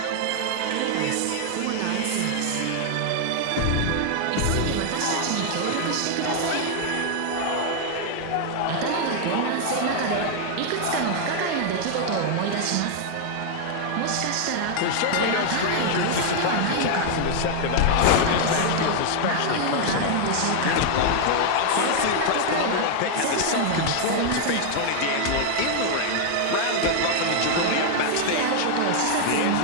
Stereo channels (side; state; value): both; different; correlation 0.00